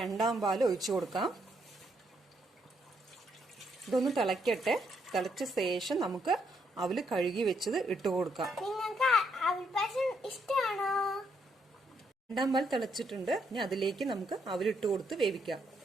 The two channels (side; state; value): both; normal; correlation 0.75